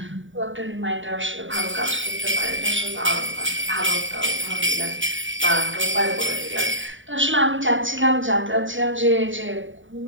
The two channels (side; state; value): left; late; 0.56 ms